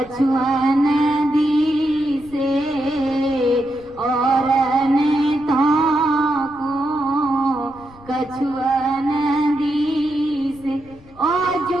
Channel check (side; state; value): left; noise; rumble, 23 dB below the sound